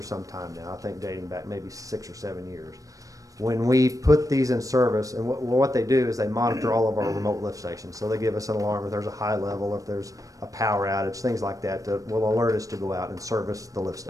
some time now, I think dating back maybe 6 or 7 years. When we put these in service, and what they do is they monitor all of our remote lift stations. So they give us an alarm if there's a high level, if there's a power outage, things like that, that will alert us to go out and service the lift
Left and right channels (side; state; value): left; late; 0.16 ms